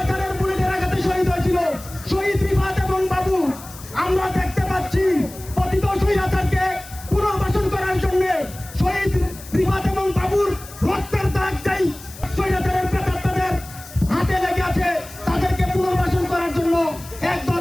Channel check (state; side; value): noise; left; hiss, 17 dB below the sound